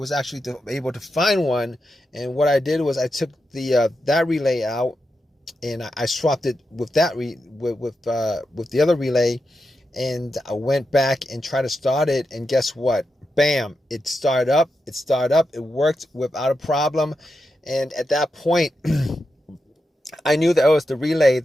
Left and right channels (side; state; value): both; normal; correlation 0.87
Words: actually able to find one. And what I did was I took that relay out, and I swapped it with that with the other relay, and I went back and tried to start it, and guess what? Bam! It started up. It worked without a problem, and at that point, I knew that it was the relay